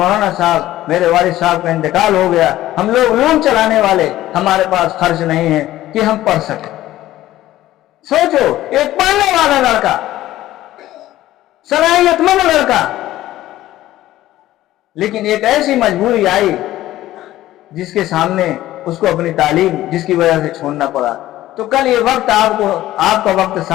صاحب میرے والد صاحب کا انتقال ہو گیا، ہم لوگ علوم چلانے والے، ہمارے پاس خرچ نہیں ہے کہ ہم پڑھ سکیں. سوچو، ایک پڑھنے والا لڑکا، صلاحیت مند لڑکا، لیکن ایک ایسی مجبوری آئی جس کے سامنے اس کو اپنی تعلیم جس کی وجہ سے چھوڑنا پڑا. تو کل یہ وقت آپ کا وقت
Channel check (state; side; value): quieter; right; 14.8 dB